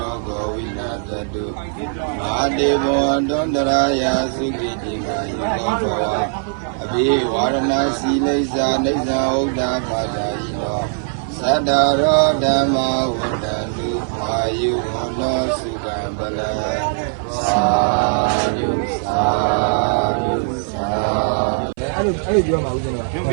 ောဂောဝိနာသတုမာတေဘောတွန္တရာယသုခိတိကာယောဘောအဘိဝါရဏစီလိစ္ဆာနိစ္စဥဒ္ဒါပါဒာယိနောသတ္တရောဓမ္မဝတ္တတုအာယုဝနောစုကံပလသာယုသာယုသာအဲ့ဒီပြောမှာဦးဇင်းတို့ပ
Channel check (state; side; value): silent; left; 57 dB below the other